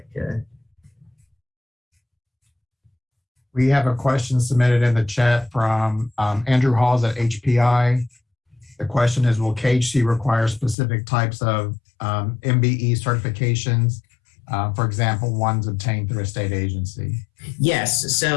we have a question submitted in the chat from Andrew Halls at HPI. The question is, will KHC require specific types of MBE certifications? For example, ones obtained through a state agency. Yes,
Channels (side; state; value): right; drops out; at 10.8 s